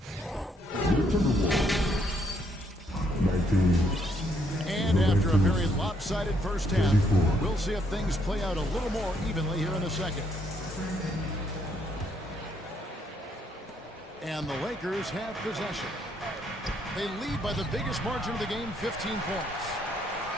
Timberwolves, 19. And after a very lopsided first half, we'll see if things play out a little more evenly here in the second. And the Lakers have possession. They lead by the biggest margin of the game, 15 points.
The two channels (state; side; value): normal; both; correlation 0.72